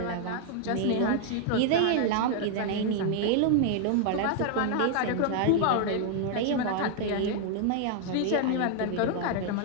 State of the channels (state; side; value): different; both; correlation 0.00